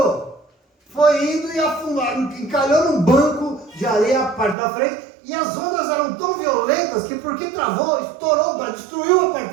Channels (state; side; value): drops out; left; at 4.5 s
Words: Foi indo e afundou, encalhou num banco de areia a parte da frente, e as ondas eram tão violentas que porque travou, estourou o barco, destruiu a